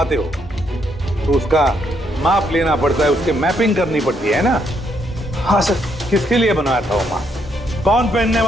हो तो उसका माप लेना पड़ता है, उसके मैपिंग करनी पड़ती है ना? हाँ सर। किसके लिए बनाया था वो मास्क? कौन पहनने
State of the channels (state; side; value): normal; both; correlation 0.74